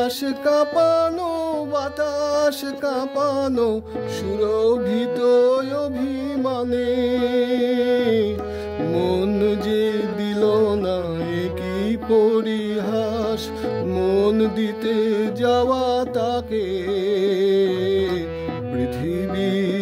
কাঁপানো বাতাস কাঁপানো সুরভিত অভিমানে। মন যে দিল না কি পরিহাস, মন দিতে যাওয়া তাকে।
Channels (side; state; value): both; identical; correlation 1.00